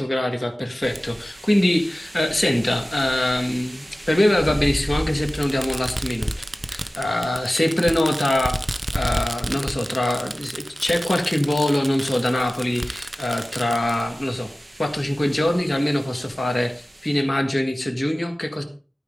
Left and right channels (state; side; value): normal; both; correlation 0.97